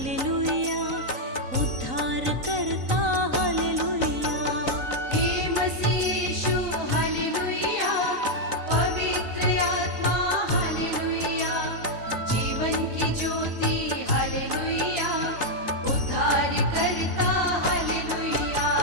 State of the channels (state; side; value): late; left; 3.9 ms